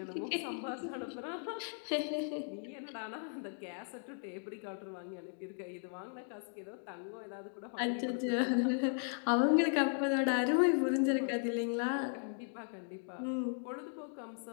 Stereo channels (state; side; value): silent; right; 53 dB below the other